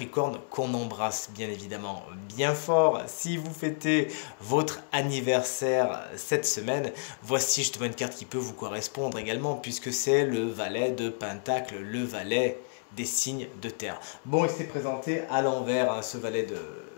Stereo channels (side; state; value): right; silent; 58 dB below the other